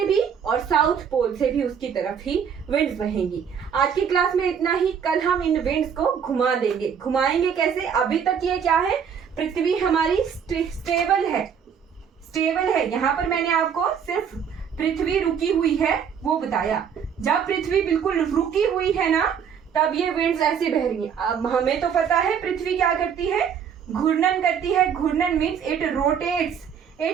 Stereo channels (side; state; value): left; quieter; 7.5 dB